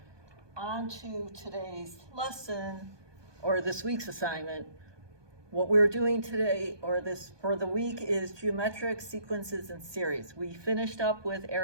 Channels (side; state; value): left; late; 1.2 ms